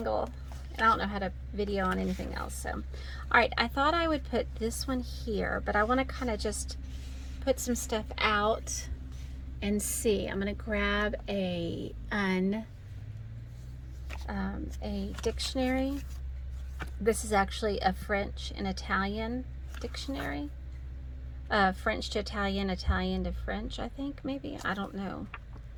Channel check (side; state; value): both; identical; correlation 1.00